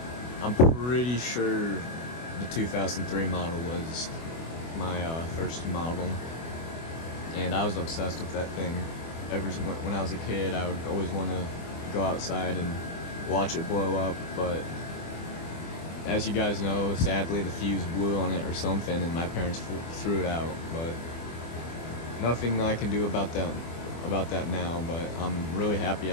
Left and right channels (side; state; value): right; late; 24 ms